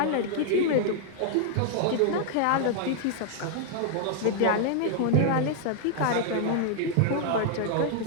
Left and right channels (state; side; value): different; both; correlation 0.00